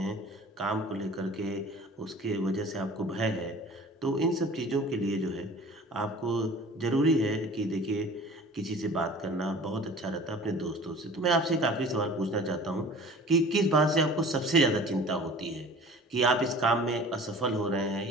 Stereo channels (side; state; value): both; normal; correlation 0.44